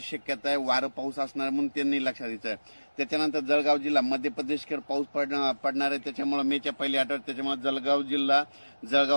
शक्यता आहे. वारं पाऊस असणार म्हणून त्यांनी लक्षात द्यायचं. त्याच्यानंतर जळगाव जिल्हा मध्य प्रदेशकडे पाऊस पडणार आहे. त्याच्यामुळे मेच्या पहिल्या आठवड्यात त्याच्यामुळे जळगाव जिल्हा,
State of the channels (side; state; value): both; inverted; correlation -1.00